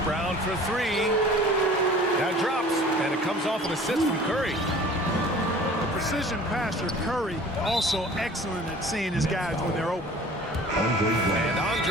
for three. That drops, and it comes off an assist from Curry. The precision passer, Curry, also excellent at seeing his guys when they're open. And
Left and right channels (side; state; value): both; normal; correlation 0.46